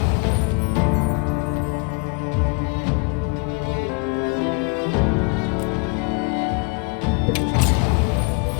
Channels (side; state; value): right; quieter; 33.6 dB